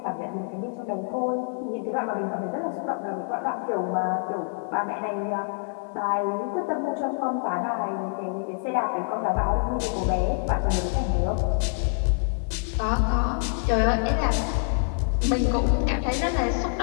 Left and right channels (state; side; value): silent; right; 61 dB below the other